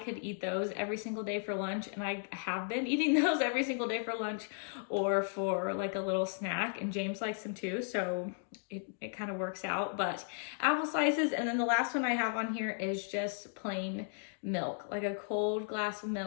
eat those every single day for lunch, and I have been eating those every single day for lunch or for like a little snack, and James likes them too, so it kind of works out. But apple slices, and then the last one I have on here is just plain milk, like a cold glass of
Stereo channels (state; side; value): silent; right; digital silence